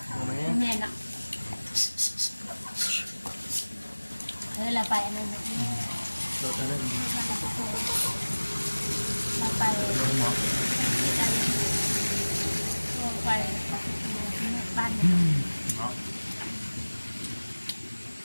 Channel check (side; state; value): both; inverted; correlation -1.00